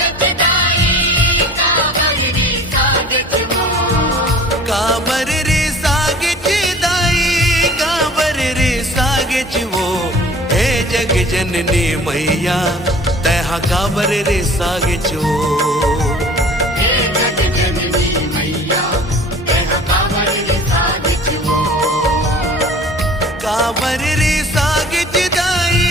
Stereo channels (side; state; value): both; normal; correlation 0.46